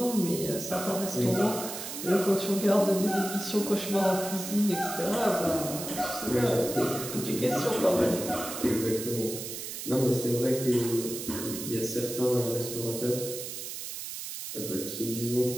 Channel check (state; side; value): noise; right; hiss, 7 dB below the sound